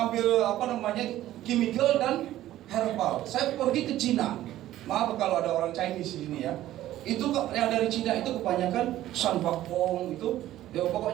chemical dan herbal. Saya pergi ke Cina. Maaf kalau ada orang Chinese di sini ya. Itu yang dari Cina itu kebanyakan sanbakpong itu, ya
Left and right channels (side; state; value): left; quieter; 14.0 dB